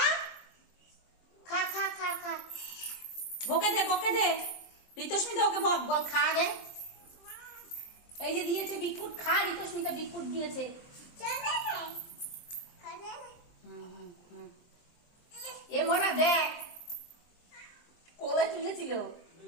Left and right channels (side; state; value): right; late; 23 ms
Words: খা খা খা খা। বকে দে বকে দে, ঋতস্মিতা ওকে বক, বল খা গে। এই যে দিয়েছে বিকুট, খা। ঋতস্মিতা বিকুট দিয়েছে। এ মোনা দেখ, কোলে তুলেছিল।